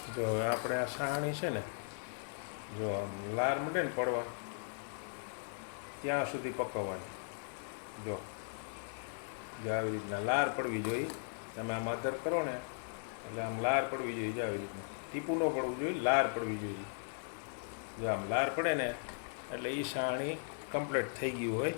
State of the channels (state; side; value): silent; right; 53 dB below the other